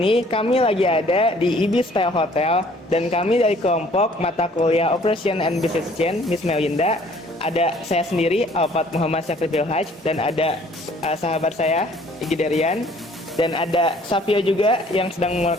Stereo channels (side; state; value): both; normal; correlation 0.57